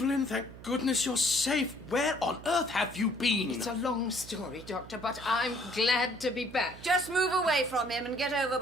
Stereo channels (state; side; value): noise; right; hum, 16 dB below the sound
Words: thank goodness you're safe. Where on earth have you been? It's a long story, Doctor, but I'm glad to be back. Just move away from him and get over